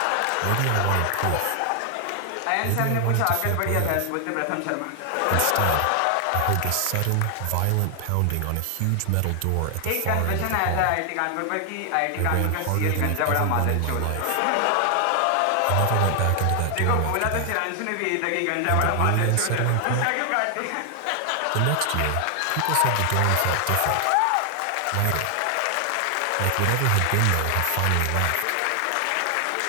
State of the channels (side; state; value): both; different; correlation 0.00